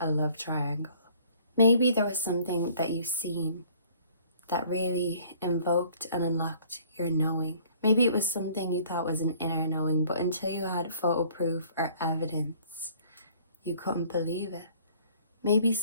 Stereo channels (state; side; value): inverted; both; correlation -0.56